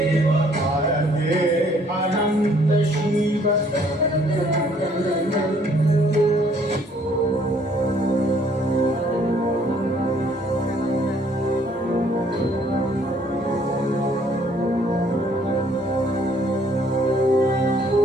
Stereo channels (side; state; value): both; normal; correlation 0.62